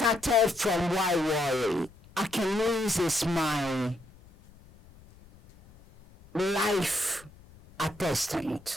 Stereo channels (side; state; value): left; noise; rumble, 25 dB below the sound